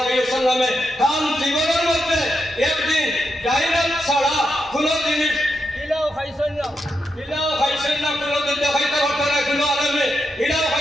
আলাইহি ওয়াসাল্লামে কাম জীবনের মধ্যে একদিন ডাইরেক্ট ছাড়া কোনো জিনিস ইলাও খাইছেন না কোনো দিন দেখাইতে পারতো না কোনো আলমে ইলাও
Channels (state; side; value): normal; both; correlation 0.84